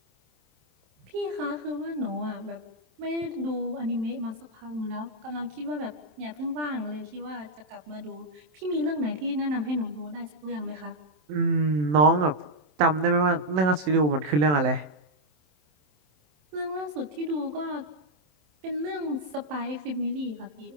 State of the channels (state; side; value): late; left; 27 ms